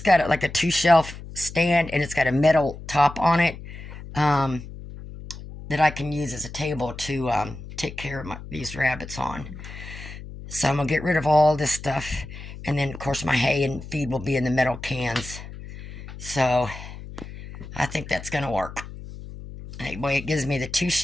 got a 2-shelf stand, and it's got a metal top on it. that I can use as a table to take care of these rabbits on. So I'm going to get rid of all this stuff. And then, of course, my hay and feed will be in the metal cans. So I think that's going to work. Anyway, it gives me the 2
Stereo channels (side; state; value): left; noise; hum, 13 dB below the sound